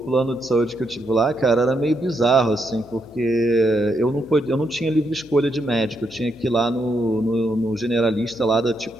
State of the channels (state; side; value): noise; left; hum, 24 dB below the sound